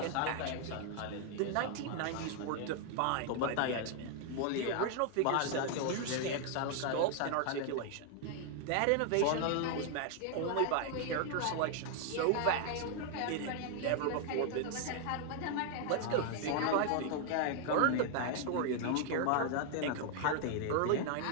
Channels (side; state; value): both; different; correlation 0.00